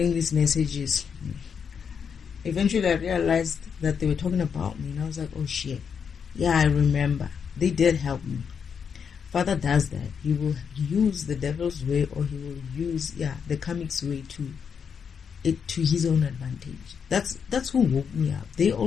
these messages? Eventually I realized that they were talking about me, and I was like, oh shit. Yeah, I remember. They did help me. Father does that. He will use the devil's way, or he will use the comic's way to his own advantage. That's who woke me up. They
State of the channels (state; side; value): quieter; right; 6.8 dB